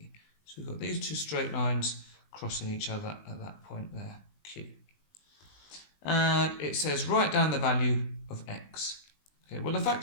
So we've got these two straight lines crossing each other at that point there, Q. And it says write down the value of X. Okay, well, the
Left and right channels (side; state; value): right; late; 20 ms